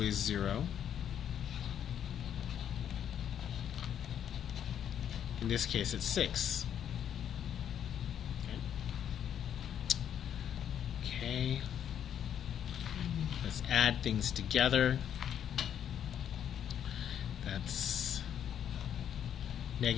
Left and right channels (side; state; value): right; quieter; 9.4 dB